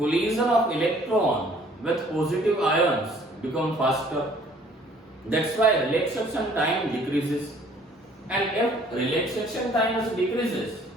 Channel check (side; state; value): both; normal; correlation 0.57